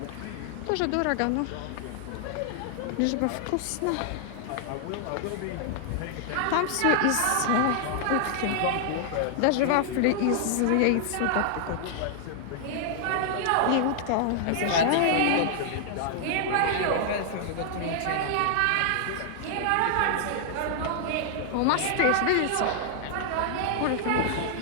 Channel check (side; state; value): both; different; correlation -0.01